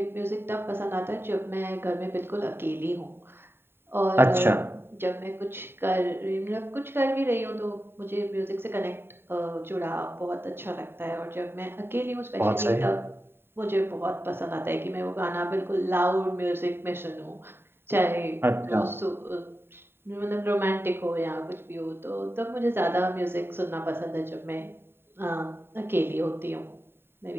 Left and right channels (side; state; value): left; late; 0.11 ms